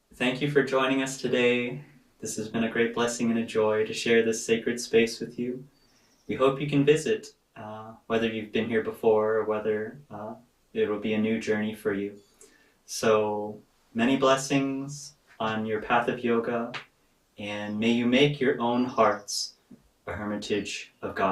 thank you for joining us today. This has been a great blessing and a joy to share this sacred space with you. We hope you can visit, whether you've been here before or whether it will be a new journey for you. So many blessings on your path of yoga, and may you make your own hearts a hermitage of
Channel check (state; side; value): identical; both; correlation 1.00